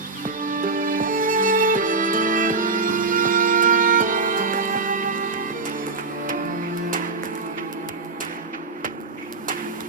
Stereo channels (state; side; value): quieter; left; 3.8 dB